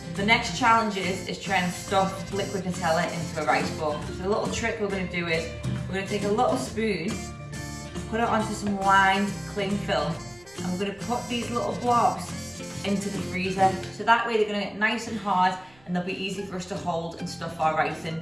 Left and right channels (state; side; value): noise; right; rumble, 29 dB below the sound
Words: the next challenge is trying to stuff liquid Nutella into a rice ball. So the little trick we're going to do is, we're going to take a little spoon, put it onto some lined cling film, and we're going to put these little blobs into the freezer. So that way they're going to get nice and hard and they'll be easy for us to hold and stuff our rice